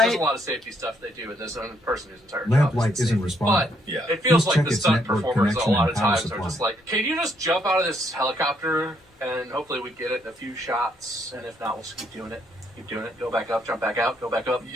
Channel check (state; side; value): normal; both; correlation 0.71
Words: There's a lot of safety stuff they do, and there's one person whose entire Lamp job light is isn't responding. But Yeah. it feels Please like check the its stunt network performers a connection lot and of power times are supply. just like, can you just jump out of this helicopter, and hopefully we get it in a few shots, and if not, we'll just keep doing it. Keep doing it. Go back up, jump back out, go back up.